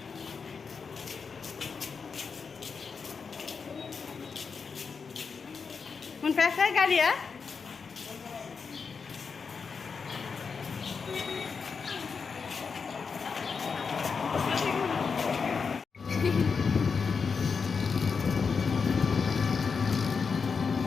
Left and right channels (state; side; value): quieter; right; 5.4 dB